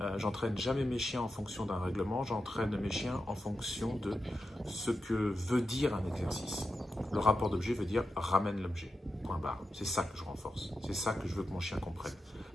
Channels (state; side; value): normal; both; correlation 0.89